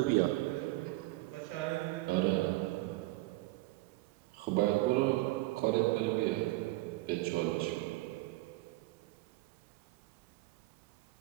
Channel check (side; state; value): left; quieter; 19.6 dB